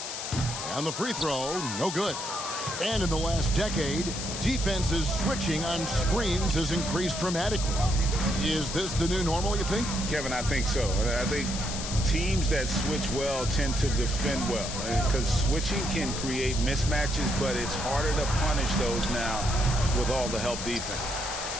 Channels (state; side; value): noise; left; hiss, 6 dB below the sound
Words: And the free throw, no good. And in the last decade, defenses switching on screens has increased dramatically. Is this the new normal, you think? Kevin, I think so. I think teams that switch well tend to defend well, because switching can create mismatches, but it's harder to punish those now with all the help defense.